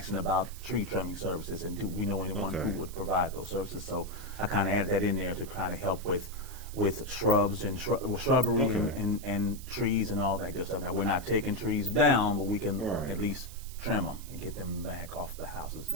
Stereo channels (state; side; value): noise; right; hiss, 17 dB below the sound